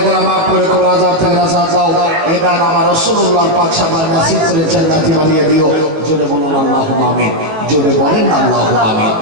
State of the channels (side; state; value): left; late; 19 ms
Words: গুনাহ মাফ করে কবর আযাব থেকে নাজাত দাও। এই দান আমার রাসূলুল্লাহ পাক সাহেব নসিব করে জান্নাতি বানিয়ে দিও। জোরে বলুন আল্লাহুম্মা আমিন। জোরে বলেন আল্লাহুম্মা আমিন।